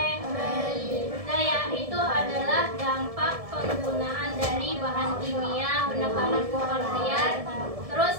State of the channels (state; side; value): late; left; 1.7 ms